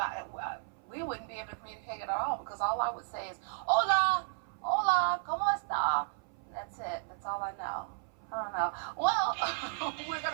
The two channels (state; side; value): silent; left; 55 dB below the other